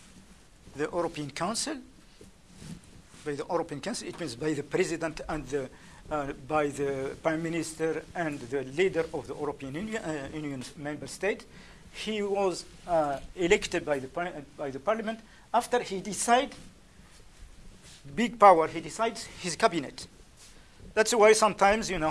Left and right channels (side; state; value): both; identical; correlation 1.00